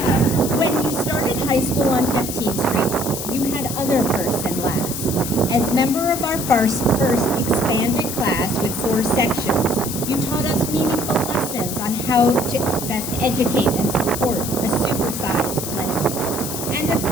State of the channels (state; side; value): noise; left; hiss, 6 dB below the sound